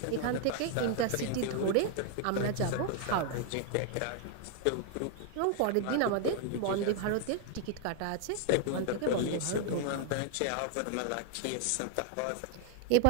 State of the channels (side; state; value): both; different; correlation 0.00